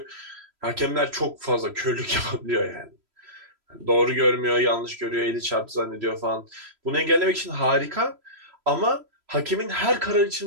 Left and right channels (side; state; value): left; late; 3.0 ms